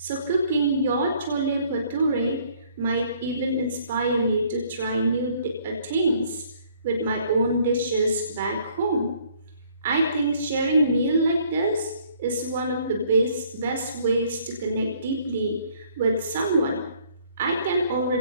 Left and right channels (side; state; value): both; inverted; correlation -0.62